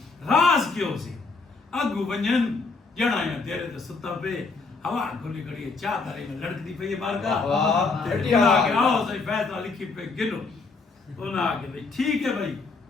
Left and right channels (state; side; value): quieter; right; 4.2 dB